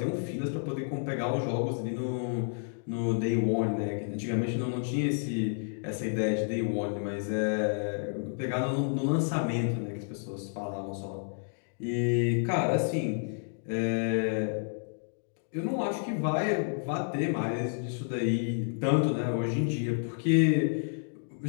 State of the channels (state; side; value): silent; right; digital silence